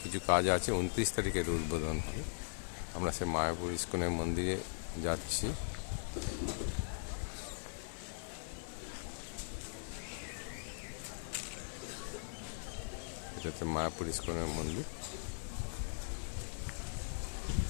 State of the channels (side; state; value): right; silent; digital silence